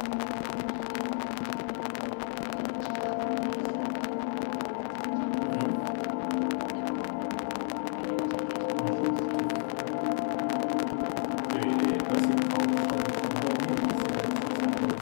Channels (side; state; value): right; quieter; 39.4 dB